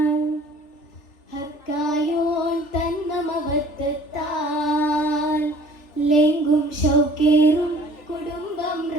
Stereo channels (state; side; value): late; right; 3.4 ms